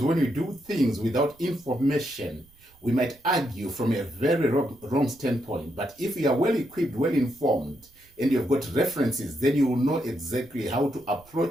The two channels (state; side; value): noise; right; rumble, 29 dB below the sound